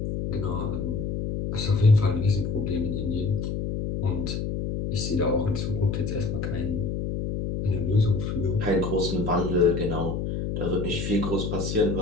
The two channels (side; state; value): left; noise; hum, 2 dB below the sound